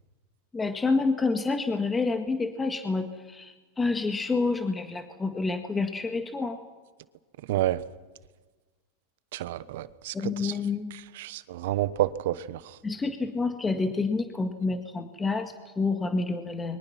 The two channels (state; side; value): normal; both; correlation 0.62